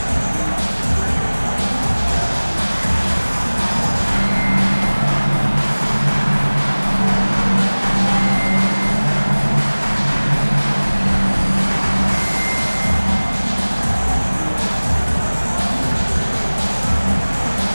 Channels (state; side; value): inverted; both; correlation -1.00